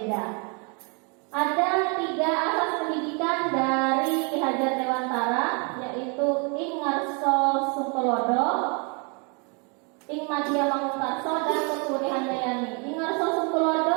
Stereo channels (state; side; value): quieter; left; 34.2 dB